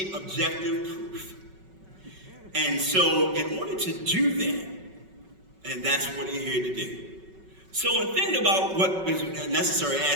objective proof. And so in order to do that, and that's what we're here to do. So in thinking about what is necessary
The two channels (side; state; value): left; late; 5.3 ms